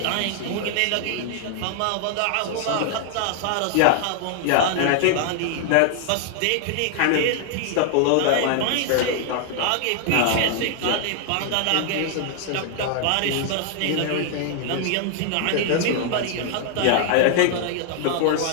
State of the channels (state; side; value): different; both; correlation 0.00